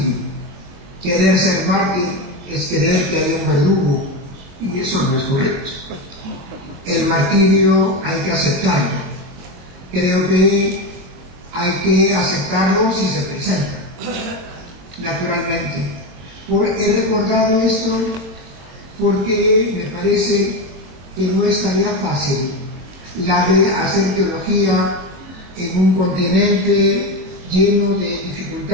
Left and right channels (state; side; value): late; left; 23 ms